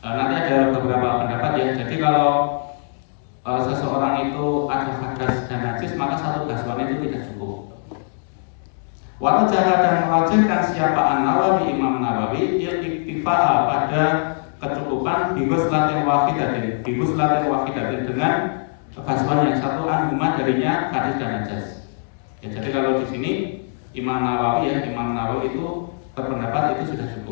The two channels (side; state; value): right; silent; digital silence